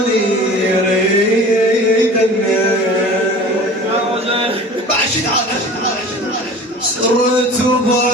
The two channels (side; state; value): both; normal; correlation 0.40